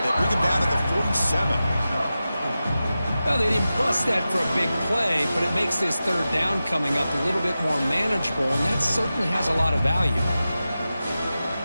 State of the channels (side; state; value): both; inverted; correlation -0.94